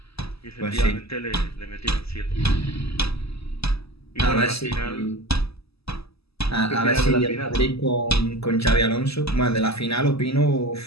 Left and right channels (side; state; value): right; late; 0.78 ms